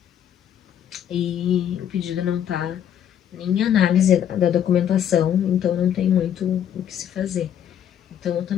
E o pedido não tá nem em análise da documentação, então não tem muito o que se fazer. Então eu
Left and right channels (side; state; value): right; quieter; 9.7 dB